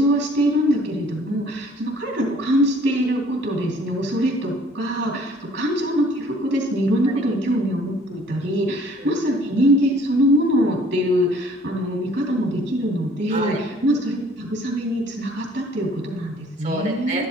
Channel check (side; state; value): both; normal; correlation 0.56